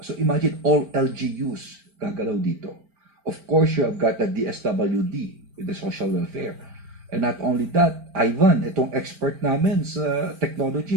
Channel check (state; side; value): late; left; 4.5 ms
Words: So imagine all LGUs gagalaw dito. Of course, you have got the DSWD with the social welfare. And not only that, Ivan, itong expert namin sa